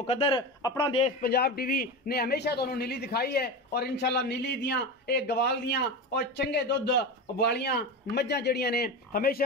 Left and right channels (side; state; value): both; normal; correlation 0.23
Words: अपना देश पंजाब टीवी ने हमेशा तुहानू नीली दिखाई है और इंशाअल्लाह नीली दियां एक गवाल दियां और चंगे दुध वालियां मज्झां जड़ियां ने